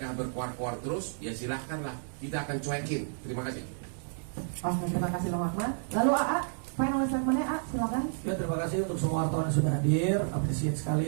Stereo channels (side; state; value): left; silent; digital silence